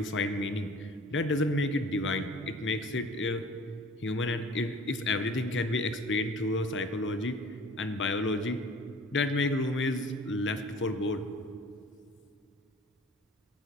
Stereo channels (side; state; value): both; normal; correlation 0.47